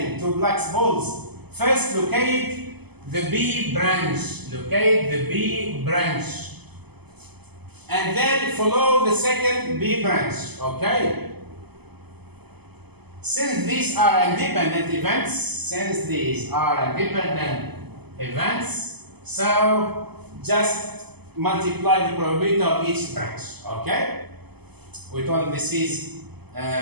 two blacks balls, first locate the B branch. Locate the B branch. And then follow the second B branch. Okay? Since these are independent events, so just multiply the probability of each branch. Okay? We told this is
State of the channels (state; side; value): late; left; 0.98 ms